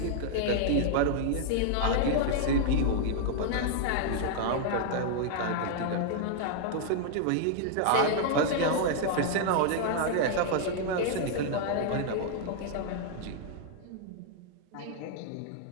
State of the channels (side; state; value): both; different; correlation -0.01